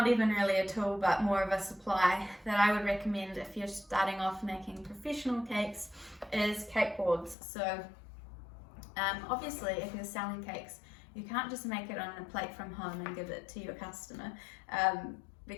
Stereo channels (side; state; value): right; drops out; at 7.4 s